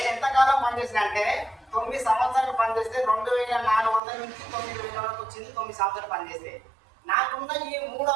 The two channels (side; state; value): left; drops out; at 4.0 s